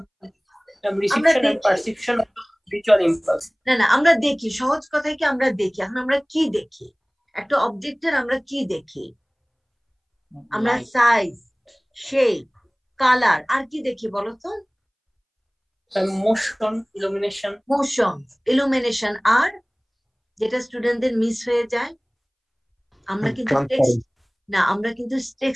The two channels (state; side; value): identical; both; correlation 1.00